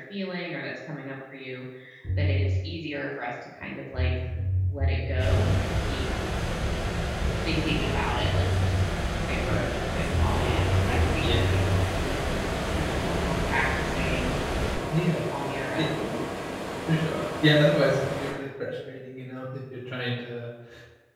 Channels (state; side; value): identical; both; correlation 1.00